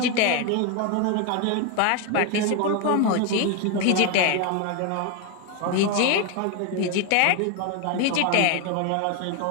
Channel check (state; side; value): different; both; correlation 0.01